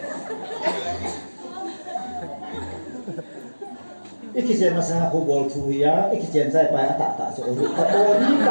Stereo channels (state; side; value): inverted; both; correlation -1.00